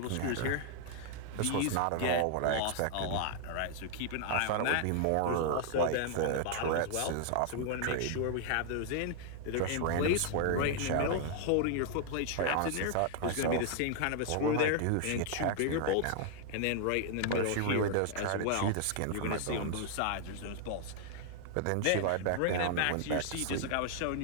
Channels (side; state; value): both; different; correlation 0.00